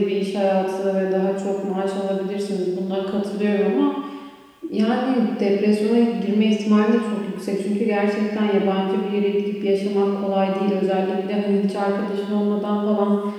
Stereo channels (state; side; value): identical; both; correlation 1.00